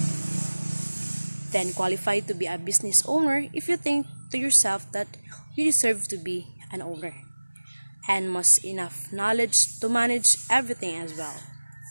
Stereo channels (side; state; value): both; inverted; correlation -1.00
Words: Then qualify to be a business owner if you think to yourself that you deserve to be an owner, and must enough knowledge to manage everything as well.